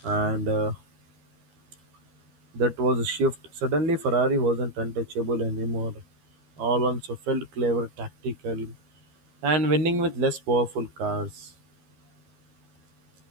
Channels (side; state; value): left; late; 12 ms